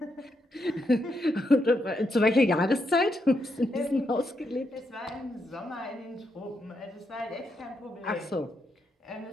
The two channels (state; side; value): normal; both; correlation 0.81